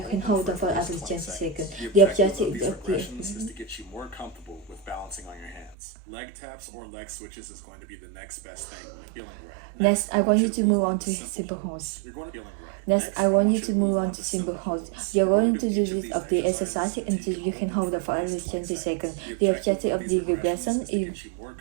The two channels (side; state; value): left; drops out; at 5.8 s